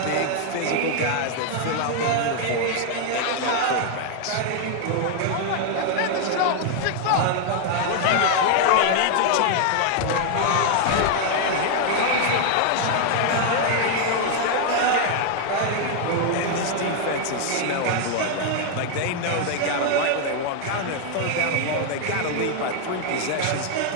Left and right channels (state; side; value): different; both; correlation 0.00